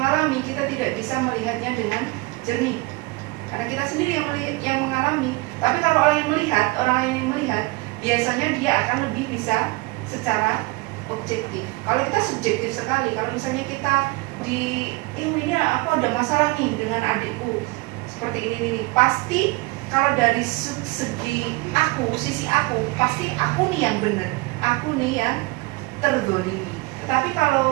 kita tidak bisa melihatnya dengan jernih. Karena kita sendiri yang mengalami. Tapi kalau orang lain yang melihat, biasanya dia akan lebih bisa secara objektif. Kalau kita subjektif sekali, kalau misalnya kita ini aku ada masalah nih dengan adikku seperti ini, pasti kalau dari segi sisi aku, pasti aku nih yang benar, aku nih yang terzolimi. Tetapi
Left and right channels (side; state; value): left; quieter; 23.3 dB